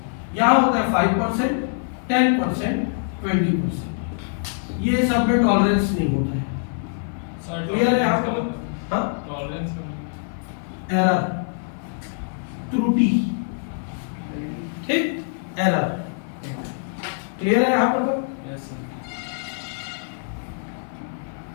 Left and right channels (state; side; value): silent; right; digital silence